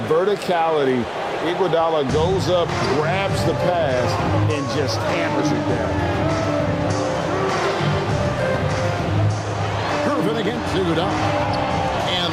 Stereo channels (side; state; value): both; identical; correlation 1.00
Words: verticality, Iguodala goes up, grabs the pass, and just hammers it down. Gervin against Iguodala.